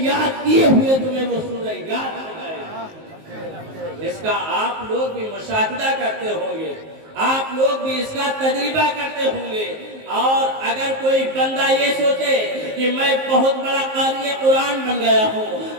یاد کیے ہوئے تمہیں وہ سورہ یاد ہو جائے۔ اس کا آپ لوگ بھی مشاہدہ کرتے ہوں گے، آپ لوگ بھی اس کا تجربہ کرتے ہوں گے۔ اور اگر کوئی بندہ یہ سوچے کہ میں بہت بڑا قاری قرآن بن گیا ہوں،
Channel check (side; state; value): left; late; 19 ms